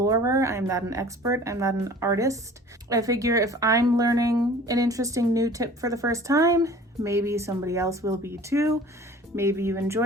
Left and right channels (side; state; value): both; normal; correlation 0.46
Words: I'm not an expert, I'm not an artist. I figure if I'm learning an interesting new tip for the first time, maybe somebody else will be too. Maybe you